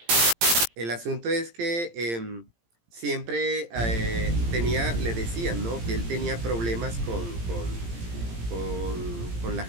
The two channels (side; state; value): left; late; 17 ms